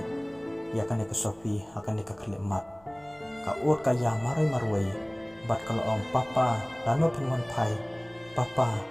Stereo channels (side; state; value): right; noise; hum, 30 dB below the sound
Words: ya kan ke Sofi akan dikekelimat ka ur ka ya marwai bat kalau om papa lano penwan pai papa